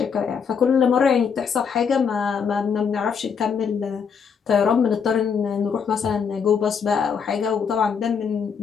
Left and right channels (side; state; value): right; quieter; 6.5 dB